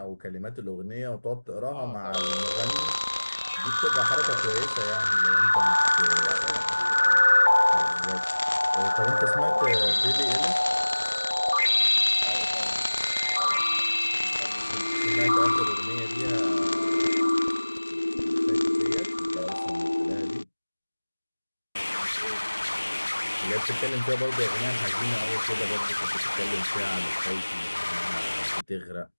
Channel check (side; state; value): both; inverted; correlation -1.00